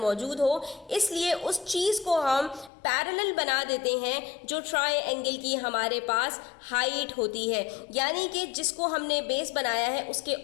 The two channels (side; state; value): right; drops out; at 2.7 s